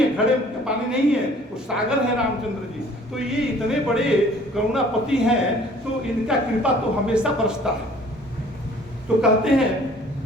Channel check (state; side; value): normal; both; correlation 0.54